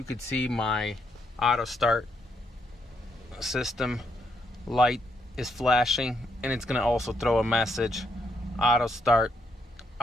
could see, my auto start system light is flashing, and it's going to also throw a message, idle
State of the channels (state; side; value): normal; both; correlation 0.76